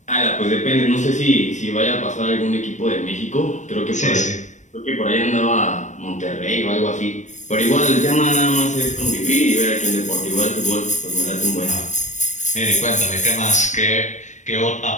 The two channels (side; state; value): right; late; 0.35 ms